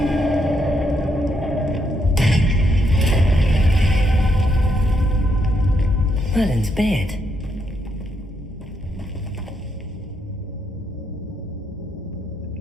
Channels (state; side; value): normal; both; correlation 0.77